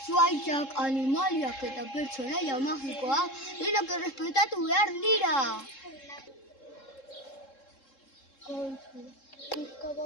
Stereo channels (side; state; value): right; late; 3.7 ms